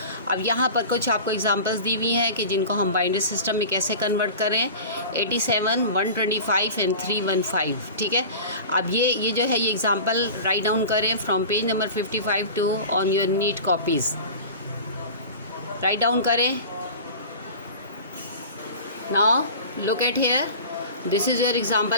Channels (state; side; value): inverted; both; correlation -0.36